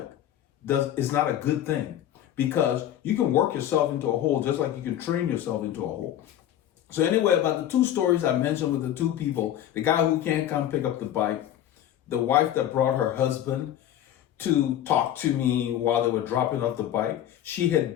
is not a good thing because you can work yourself into a hole just like you can train yourself into a hole. So anyway, about the two stories I mentioned with the two people, the guy who can't come pick up the bike, the wife that brought her husband to talk to me while they were dropping off the bike. She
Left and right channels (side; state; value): right; quieter; 11.5 dB